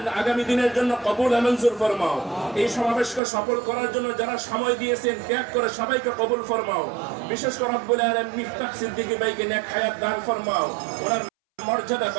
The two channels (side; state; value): left; drops out; at 3.2 s